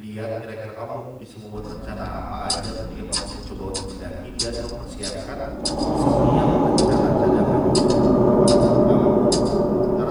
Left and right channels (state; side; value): identical; both; correlation 1.00